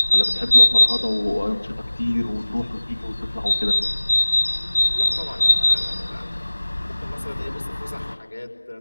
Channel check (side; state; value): both; inverted; correlation -1.00